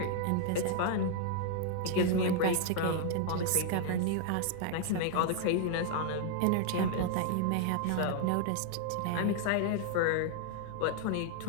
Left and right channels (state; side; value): different; both; correlation 0.00